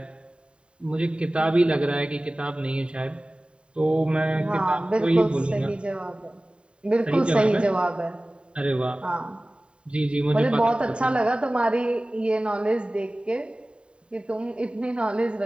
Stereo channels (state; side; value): late; left; 0.054 ms